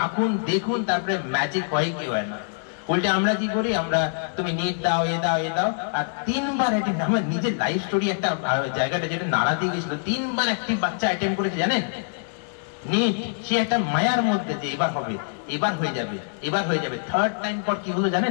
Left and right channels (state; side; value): silent; right; digital silence